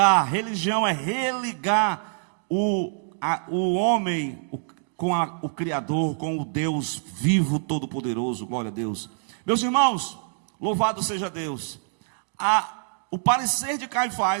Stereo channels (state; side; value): silent; left; digital silence